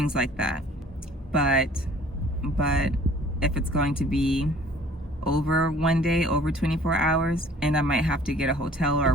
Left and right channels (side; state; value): both; normal; correlation 0.53